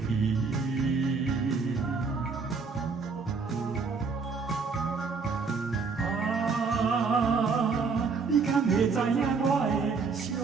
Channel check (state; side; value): quieter; left; 4.9 dB